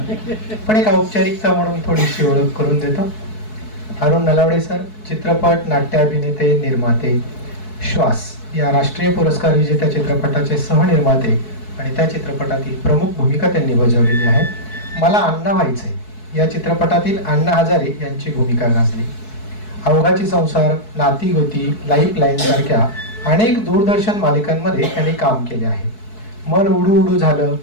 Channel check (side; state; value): right; late; 4.6 ms